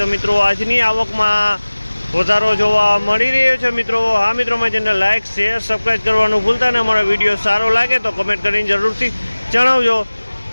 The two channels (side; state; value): both; inverted; correlation -1.00